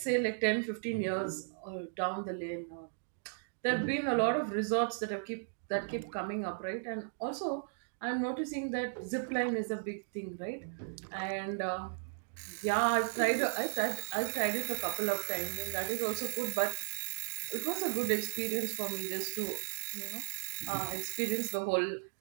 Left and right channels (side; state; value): left; silent; digital silence